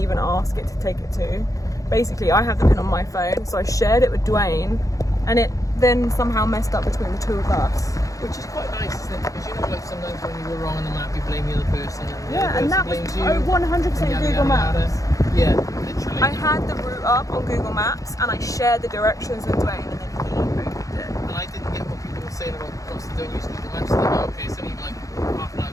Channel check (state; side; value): late; right; 0.16 ms